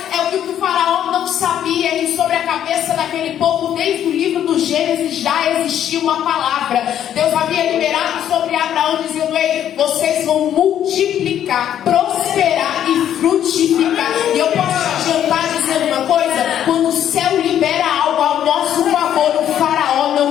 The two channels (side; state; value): right; quieter; 10.4 dB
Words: É o que o Faraó não sabia, que sobre a cabeça daquele povo, desde o livro do Gênesis, já existia uma palavra. Deus havia liberado sobre Abraão, dizendo, ei, vocês vão multiplicar, prosperar e frutificar. E eu posso te adiantar dizendo uma coisa, quando o céu libera algo ao nosso favor, o Faraó não